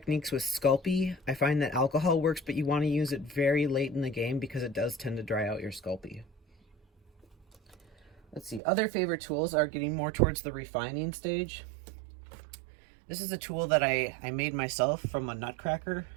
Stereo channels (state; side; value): drops out; left; at 8.6 s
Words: with Sculpey, I find that alcohol works, but you want to use it very late in the game because it does tend to dry out your Sculpey. Let's see, other favorite tools are getting more towards the refining stage. This is a tool that I made myself from a nutcracker